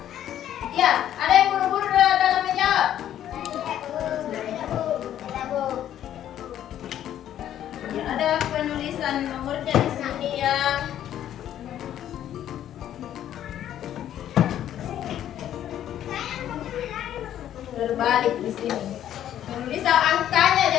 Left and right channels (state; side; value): quieter; right; 11.2 dB